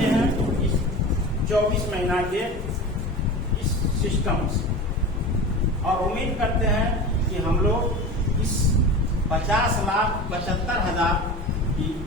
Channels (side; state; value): both; normal; correlation 0.31